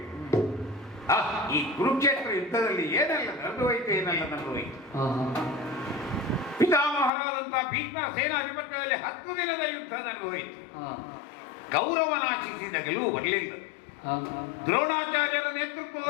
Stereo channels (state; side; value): drops out; right; at 7.1 s